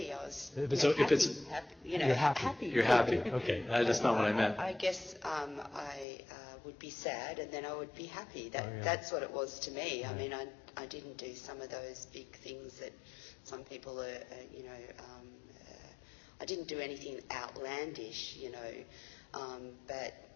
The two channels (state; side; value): drops out; right; at 6.1 s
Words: I was happy. You're happy. You're happy. Okay, that's not what I meant. I guess I would be sad and then I would be happy. That's what it was to me. I mean, I didn't do some of those big things that some people are, I didn't do anything outlandish, but